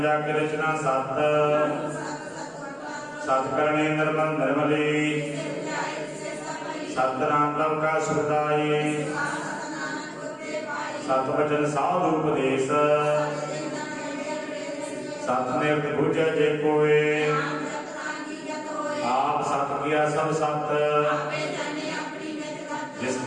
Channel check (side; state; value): both; identical; correlation 1.00